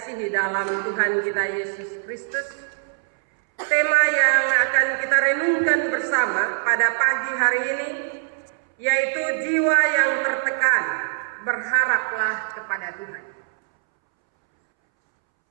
dalam Tuhan kita Yesus Kristus, tema yang akan kita renungkan bersama pada pagi hari ini yaitu jiwa yang tertekan, berharaplah kepada Tuhan.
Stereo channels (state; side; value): silent; left; 64 dB below the other